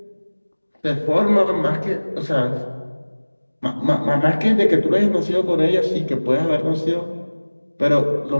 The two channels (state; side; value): inverted; both; correlation -1.00